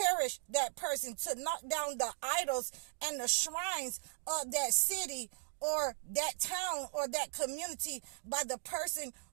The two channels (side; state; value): left; silent; digital silence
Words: that person, to knock down the idols and the shrines of that city or that town or that community by the person